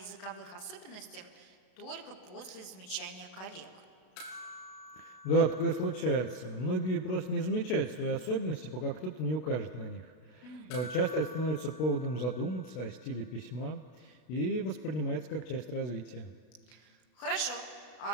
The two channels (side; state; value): right; late; 33 ms